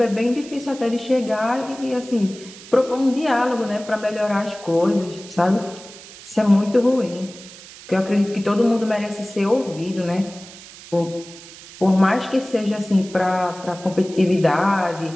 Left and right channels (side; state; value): right; noise; hiss, 18 dB below the sound